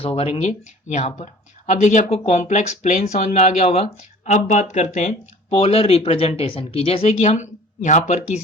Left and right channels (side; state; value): both; normal; correlation 0.46